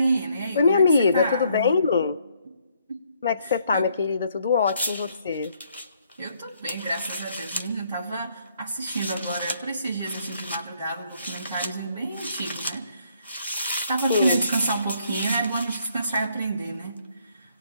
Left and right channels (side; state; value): both; inverted; correlation -0.69